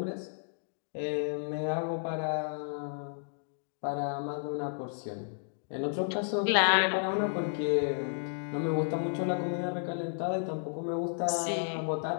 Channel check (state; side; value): silent; right; digital silence